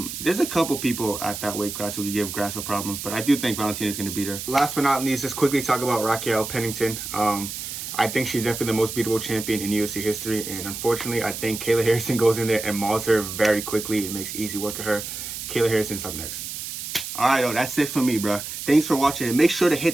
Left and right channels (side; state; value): right; noise; hiss, 7 dB below the sound